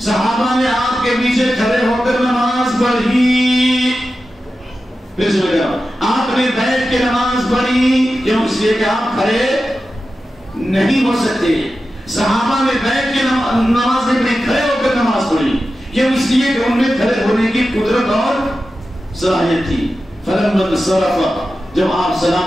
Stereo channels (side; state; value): both; normal; correlation 0.92